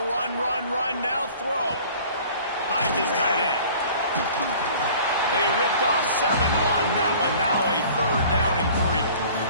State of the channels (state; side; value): inverted; both; correlation -0.48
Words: now throw. Finds his tight end. They ripped off 7 on that one. Now a 3rd down and 3.